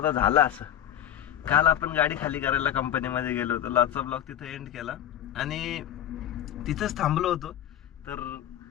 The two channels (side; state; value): right; quieter; 10.9 dB